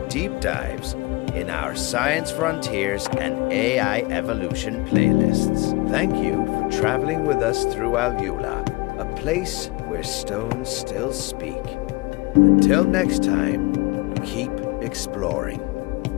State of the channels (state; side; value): quieter; right; 23.5 dB